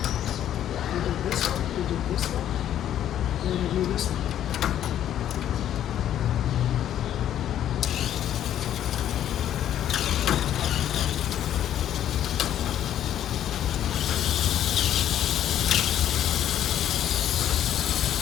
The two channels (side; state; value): right; quieter; 11.0 dB